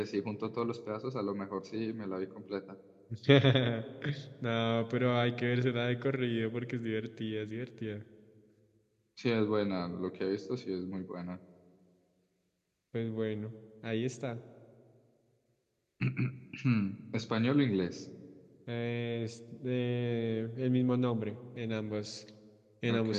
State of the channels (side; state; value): both; identical; correlation 1.00